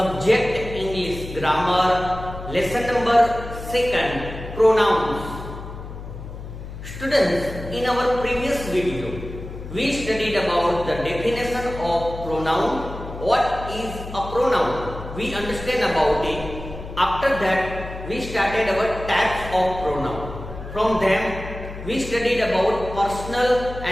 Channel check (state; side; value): noise; left; hum, 11 dB below the sound